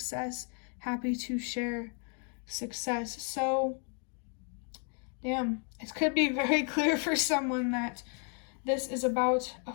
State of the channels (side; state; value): right; quieter; 38.7 dB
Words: happy to share success. So, damn, it could be very clear for someone that this is about a